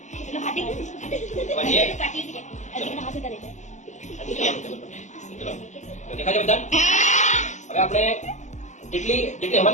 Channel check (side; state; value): right; late; 0.35 ms